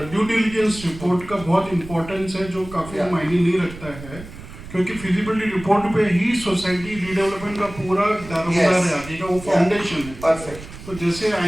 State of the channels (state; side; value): noise; right; rumble, 15 dB below the sound